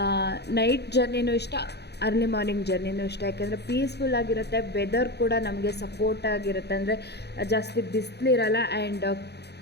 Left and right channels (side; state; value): right; late; 0.48 ms